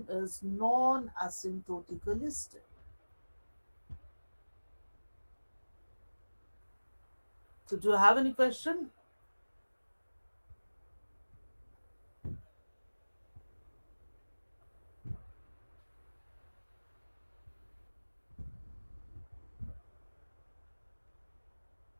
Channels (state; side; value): inverted; both; correlation -1.00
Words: is non-asymptotically stable. So do you have any question?